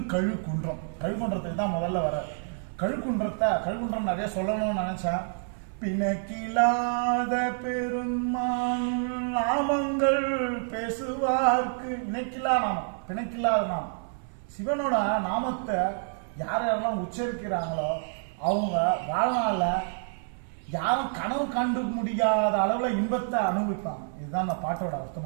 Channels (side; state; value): left; silent; 59 dB below the other